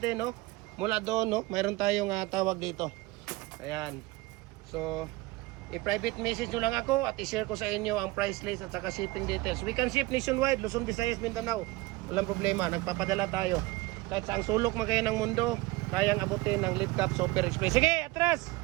no? Mula doon, no? Mayroon tayong tawag dito. Ayan. So, i-private message nyo lang ako at i-share ko sa inyo ang price list at saka shipping details. We can ship nationwide, Luzon, Visayas, Mindanao. Walang problema, nagpapadala tayo. Kahit saang sulok man kayo ng mundo, kayang abutin ng Lead Cup Super Express. Sige, atras!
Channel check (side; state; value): left; quieter; 20.9 dB